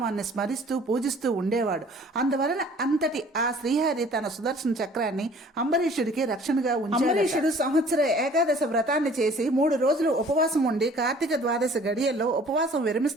స్మరిస్తూ పూజిస్తూ ఉండేవాడు. అందువలన అంతటి ఆ శ్రీహరి తన సుదర్శన చక్రాన్ని అంబరీషుడికి రక్షణగా ఉంచాడు. అంబరీషుడు సంవత్సర ఏకాదశ వ్రతాన్ని చేసి 3 రోజులు ఉపవాసం ఉండి కార్తీక ద్వాదశ గడియల్లో ఉపవాసం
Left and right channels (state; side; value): normal; both; correlation 0.52